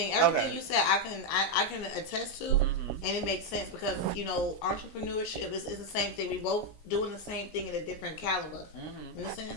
Everything you said, I can attest to, and it makes sense because entrepreneurship is the same thing. We both doing the same thing in a different caliber. You understand?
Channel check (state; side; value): late; right; 17 ms